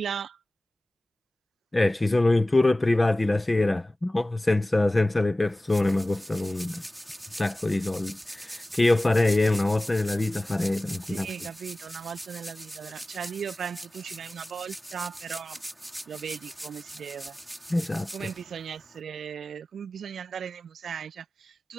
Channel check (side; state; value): both; normal; correlation 0.97